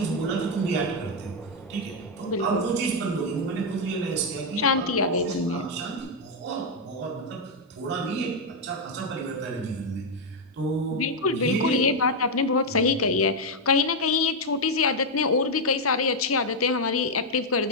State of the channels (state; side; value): normal; both; correlation 0.01